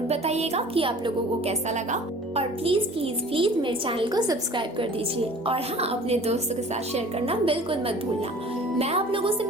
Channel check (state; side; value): normal; both; correlation 0.46